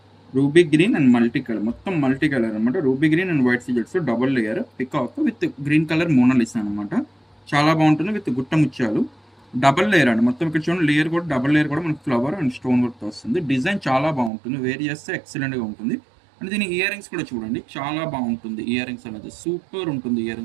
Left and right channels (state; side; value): drops out; left; at 14.3 s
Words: ruby green and multi colour, మొత్తం మల్టీ కలర్ అనమాట. రూబీ గ్రీన్ అండ్ వైట్ సీజెట్స్ double layer peacock with green colour Mona Lisa అనమాట. చాలా బాగుంటుంది విత్ గుట్ట ముత్యాలు, డబల్ లేయర్ అండి. మొత్తం ఇక్కడ చూడండి, లేయర్ కూడా డబల్ లేయర్ కూడా మనకి ఫ్లవర్ అండ్ స్టోన్ వర్క్ వస్తుంది. డిజైన్ చాలా బాగుంటుంది, వేర్ చేస్తే ఎక్సలెంట్గా ఉంటుంది. అండ్ దీని ఇయర్ రింగ్స్ కూడా చూడండి, చాలా బాగుంటుంది. ఇయర్ రింగ్స్ అనేది సూపర్ ఉంటుంది. ఇయర్